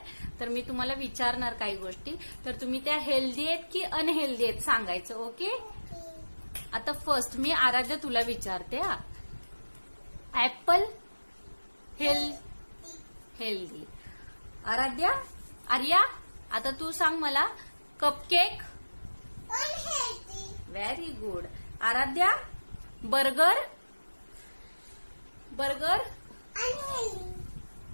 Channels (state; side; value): inverted; both; correlation -1.00